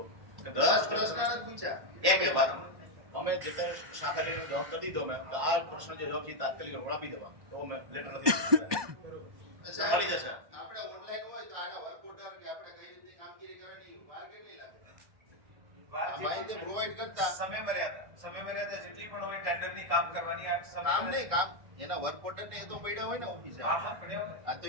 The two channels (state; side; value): late; left; 1.1 ms